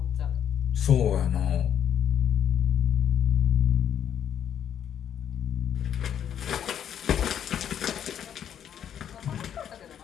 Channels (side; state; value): right; quieter; 9.3 dB